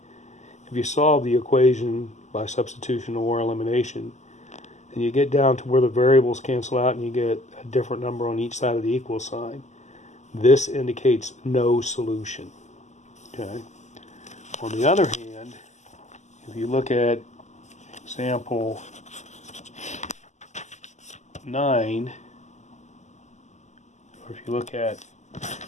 If you solve the equation by substitution or elimination, and you get down to where the variables cancel out and you get a different number on each side of the equal sign, this indicates no solution. Okay. On the other hand, if you look at example 9, or if you look at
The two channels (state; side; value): late; right; 0.34 ms